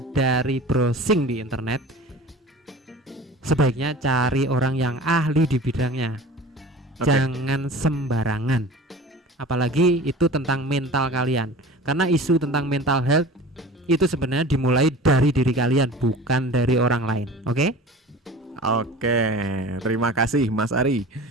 browsing di internet, sebaiknya cari orang yang ahli di bidangnya. Oke. Jangan sembarangan, apalagi itu tentang mental kalian, karena isu tentang mental health itu sebenarnya dimulai dari diri kalian, bukan dari orang lain. Oke? Oke, terima kasih Mas Ari.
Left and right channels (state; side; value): normal; both; correlation 0.39